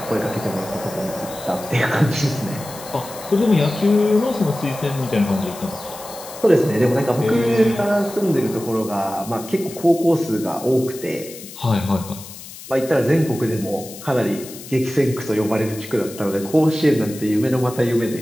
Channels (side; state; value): left; noise; hiss, 15 dB below the sound